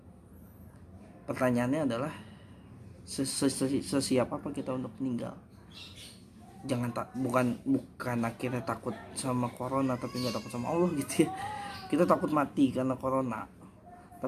pertanyaannya adalah sesiap apa kita untuk meninggal. Jangan bukan akhirnya takut sama corona tapi nggak takut sama Allah gitu ya. Kita takut mati karena corona,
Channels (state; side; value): identical; both; correlation 1.00